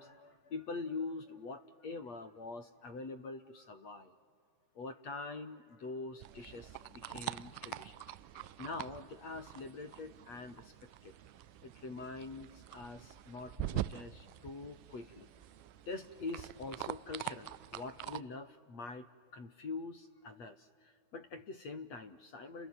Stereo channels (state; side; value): late; right; 8.4 ms